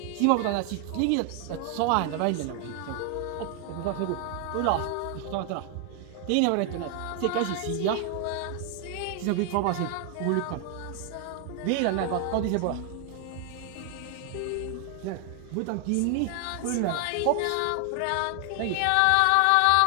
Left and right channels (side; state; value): both; different; correlation 0.00